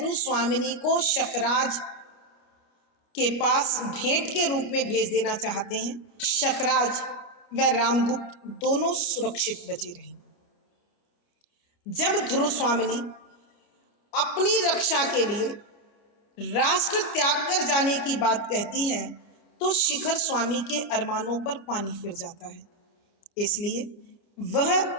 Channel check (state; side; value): late; right; 29 ms